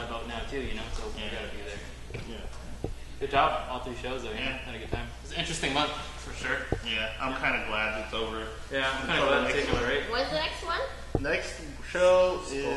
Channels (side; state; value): both; identical; correlation 1.00